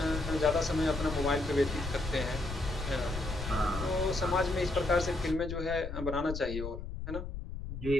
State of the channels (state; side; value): noise; left; rumble, 7 dB below the sound